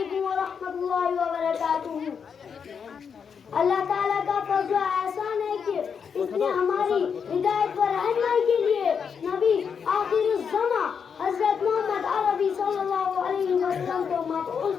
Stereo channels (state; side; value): quieter; right; 6.6 dB